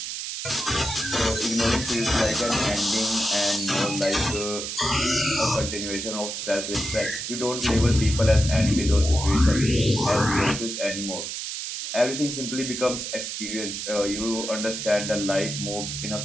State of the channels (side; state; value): right; noise; hiss, 5 dB below the sound